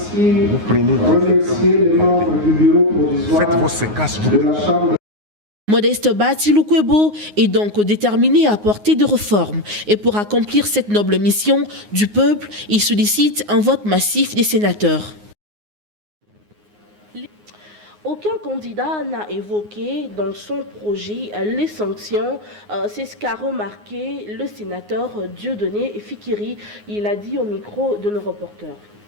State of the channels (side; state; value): left; late; 9.6 ms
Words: remercier les membres du bureau provisoire de la Chambre. Modeste Bati Lukwebo est donc déterminé à apporter des réformes. Et pour accomplir cette noble mission du peuple, il sollicite un vote massif des sénateurs. Aucun candidat n'a évoqué dans son projet les sanctions. C'est ce qu'a remarqué le sénateur Dieudonné Fikiri. Il a dit au micro de nos reporters.